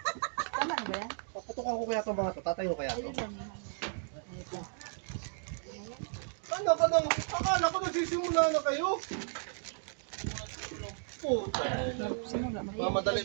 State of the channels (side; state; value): left; silent; digital silence